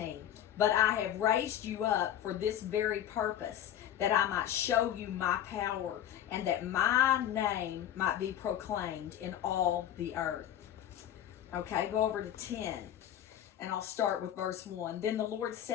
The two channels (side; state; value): right; quieter; 11.0 dB